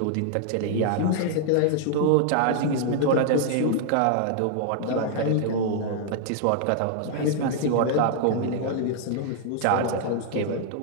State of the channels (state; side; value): different; both; correlation -0.01